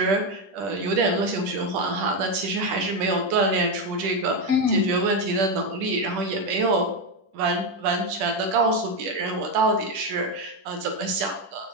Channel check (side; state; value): left; late; 10 ms